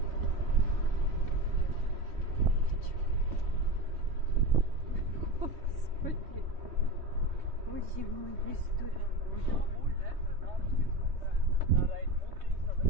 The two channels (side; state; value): left; late; 3.2 ms